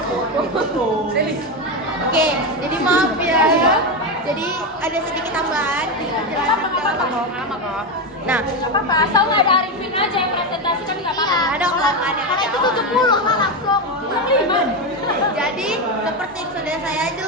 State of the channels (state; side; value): normal; both; correlation 0.12